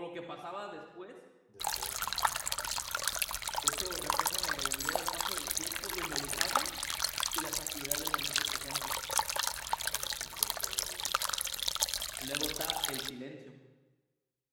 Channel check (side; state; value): both; identical; correlation 1.00